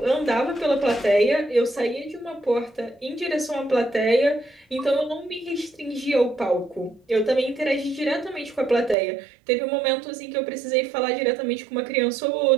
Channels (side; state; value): left; drops out; at 9.0 s